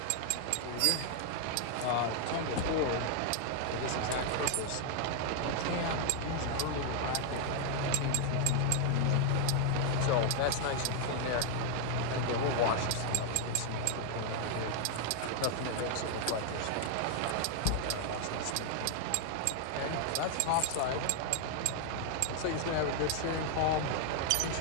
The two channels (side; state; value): both; different; correlation 0.00